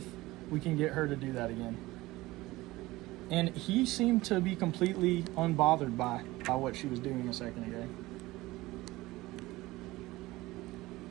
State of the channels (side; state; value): left; quieter; 19.1 dB